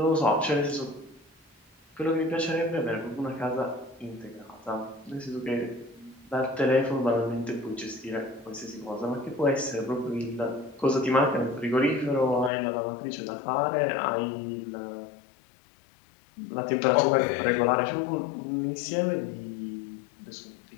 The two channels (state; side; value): drops out; right; at 12.5 s